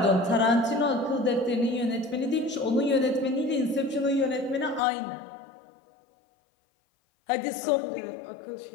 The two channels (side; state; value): right; drops out; at 4.8 s